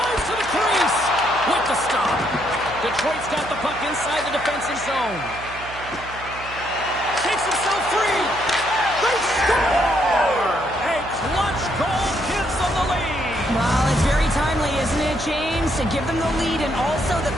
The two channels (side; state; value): right; noise; hum, 15 dB below the sound